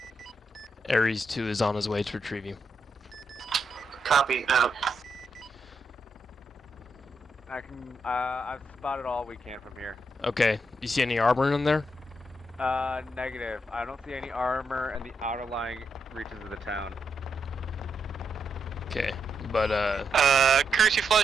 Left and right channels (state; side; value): normal; both; correlation 0.82